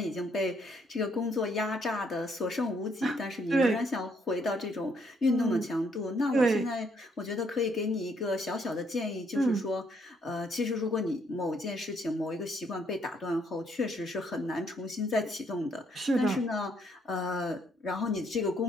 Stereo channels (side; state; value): both; normal; correlation 0.70